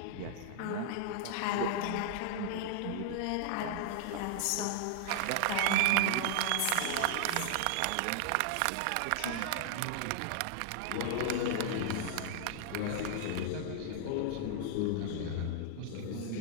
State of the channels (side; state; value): both; different; correlation 0.00